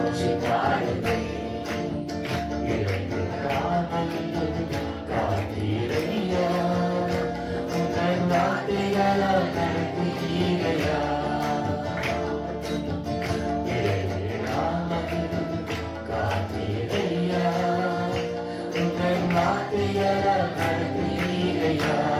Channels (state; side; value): identical; both; correlation 1.00